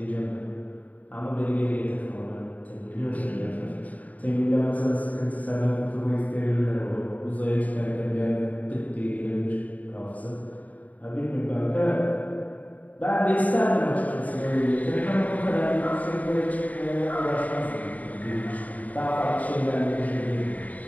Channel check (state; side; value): late; right; 0.073 ms